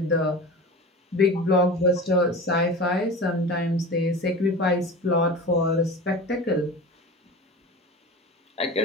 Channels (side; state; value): both; normal; correlation 0.33